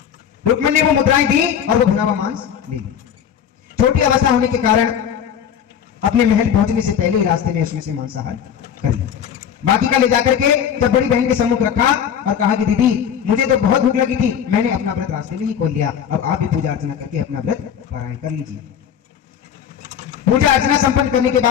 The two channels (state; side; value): quieter; right; 8.7 dB